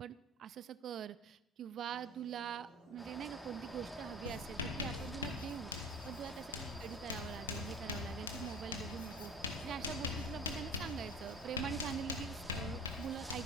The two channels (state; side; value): normal; both; correlation 0.39